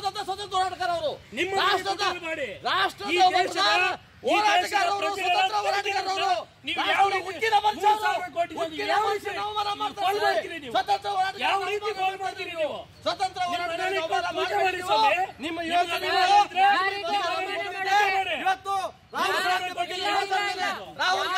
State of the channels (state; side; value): identical; both; correlation 1.00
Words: ಸ್ವತಂತ್ರ ಹೋರಾಟಗಾರ ಅವರು, ಸ್ವತಂತ್ರ ನಿಮ್ಮ ಯೋಚನೆ ಇವತ್ತು ರಾಹುಲ್